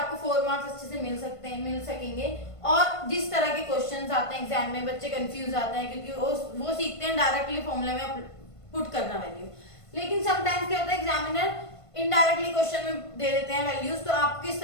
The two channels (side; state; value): right; late; 1.5 ms